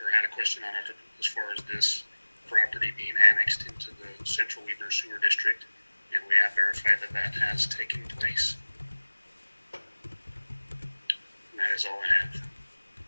a question on it as far as this property being annexed into the Central Weaver Sewer District, and we have verified that that has taken place. And that is all I have.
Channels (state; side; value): inverted; both; correlation -1.00